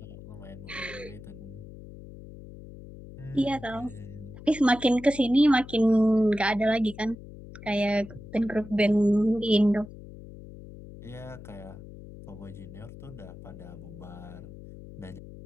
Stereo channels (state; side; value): noise; left; hum, 15 dB below the sound